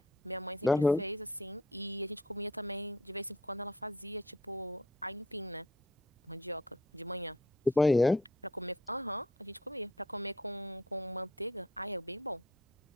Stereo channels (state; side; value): normal; both; correlation 0.56